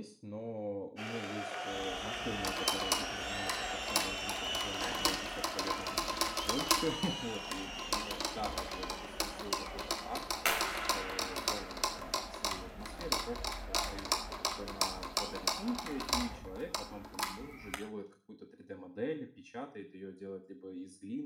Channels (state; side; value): identical; both; correlation 1.00